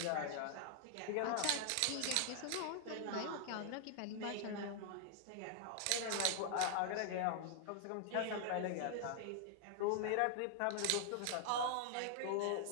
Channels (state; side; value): different; both; correlation -0.01